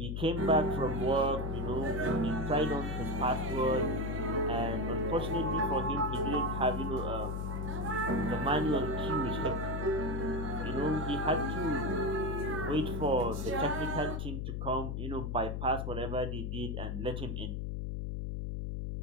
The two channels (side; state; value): left; noise; hum, 3 dB below the sound